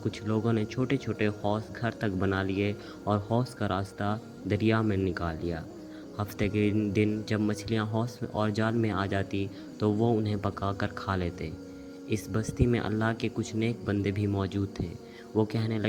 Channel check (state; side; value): identical; both; correlation 1.00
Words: کچھ لوگوں نے چھوٹے چھوٹے حوض گھر تک بنا لیے اور حوض کا راستہ دریا میں نکال لیا۔ ہفتے کے دن جب مچھلیاں حوض اور جال میں آ جاتی تو وہ انہیں پکا کر کھا لیتے۔ اس بستی میں اللہ کے کچھ نیک بندے بھی موجود تھے۔ وہ کہنے